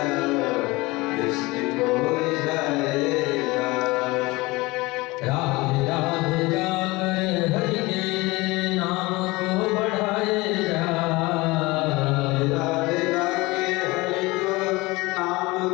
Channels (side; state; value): right; quieter; 22.3 dB